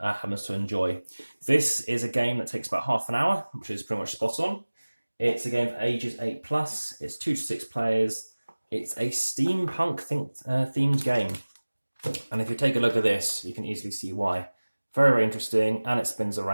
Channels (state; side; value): inverted; both; correlation -1.00